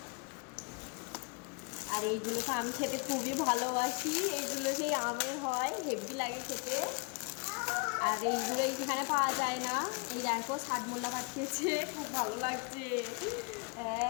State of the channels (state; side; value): quieter; right; 34.5 dB